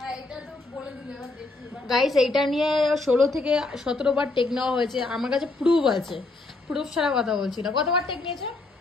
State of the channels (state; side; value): quieter; right; 3.2 dB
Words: এটা তো বলে দিলে, এবার দেখি এবার। গাইস এইটা নিয়ে 16 থেকে 17 বার টেক নেওয়া হয়েছে, আমার কাছে প্রুফ আছে। প্রুফ ছাড়া কথা বলছি না। কতবার টেক নিয়েছে?